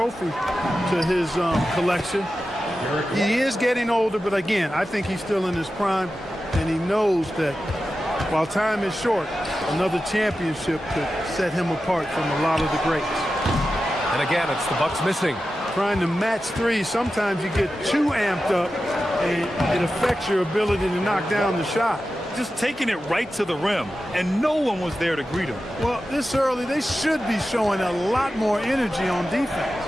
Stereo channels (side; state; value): both; normal; correlation 0.92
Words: to his collection. He is getting older, but again, I think he's still in his prime, and he knows that while time is short, another championship could set him apart from a lot of the greats. And again, it's the Bucks missing. Trying to match threes, sometimes you get too amped up, and it affects your ability to knock down the shot. Just taking it right to the rim, and no one was there to greet him. Well, this early, they should be showing a lot more energy on defense.